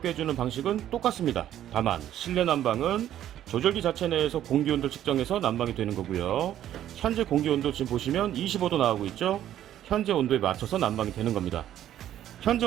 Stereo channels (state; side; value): quieter; left; 11.7 dB